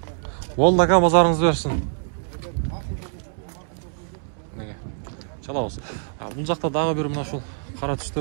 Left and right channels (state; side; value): silent; left; 62 dB below the other